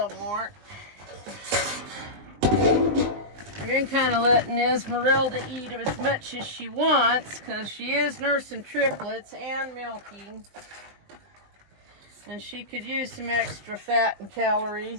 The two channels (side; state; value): left; late; 20 ms